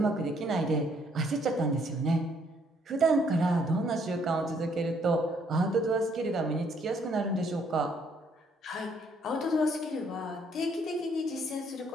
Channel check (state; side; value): normal; both; correlation 0.67